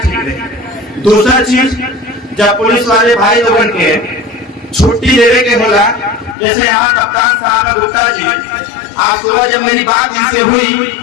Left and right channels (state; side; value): drops out; right; at 6.4 s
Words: रही? दूसरा चीज, जब पुलिस वाले भाई लोगों के छुट्टी देने के होला, जैसे यहाँ कप्तान साहब है गुप्ता जी, आज सुबह जब मेरी बात इनसे हुई